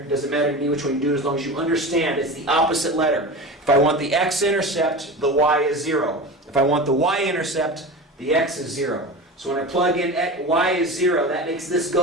to me which one you do as long as you understand it's the opposite letter. If I want the x-intercept, the y is 0. If I want the y-intercept, the x is 0. So when I plug in y is 0, that makes this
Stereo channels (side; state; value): both; normal; correlation 0.29